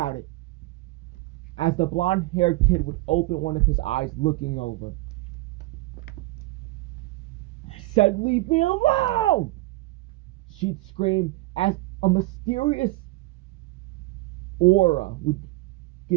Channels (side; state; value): left; quieter; 20.3 dB